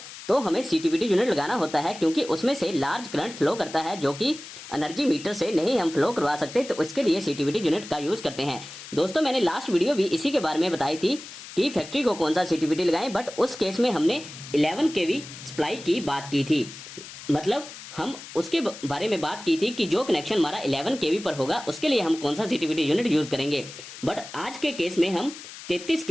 तो हमें सीटीपीटी यूनिट लगाना होता है, क्योंकि उसमें से लार्ज करंट फ्लो करता है जो कि एनर्जी मीटर से नहीं हम फ्लो करवा सकते, तो इसके लिए सीटीपीटी यूनिट का यूज करते हैं। दोस्तों, मैंने लास्ट वीडियो भी इसी के बारे में बताई थी कि फैक्ट्री को कौन सा सीटीपीटी लगाएं, बट उस केस में हमने 11 केवी सप्लाई की बात की थी। मतलब हम उसके बारे में बात की थी कि जो कनेक्शन हमारा 11 केवी पर होगा उसके लिए हम कौन सा सीटीपीटी यूनिट यूज करेंगे। बट आज के केस में हम 33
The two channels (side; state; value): left; noise; hiss, 14 dB below the sound